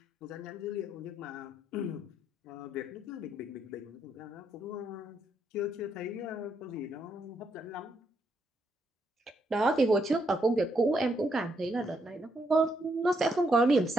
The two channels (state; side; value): normal; both; correlation 0.77